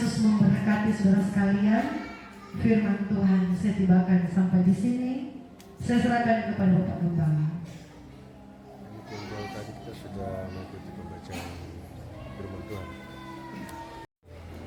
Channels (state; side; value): identical; both; correlation 1.00